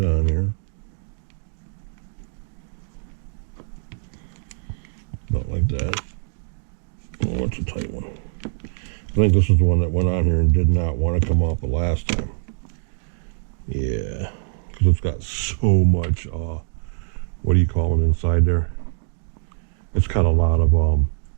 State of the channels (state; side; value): silent; left; digital silence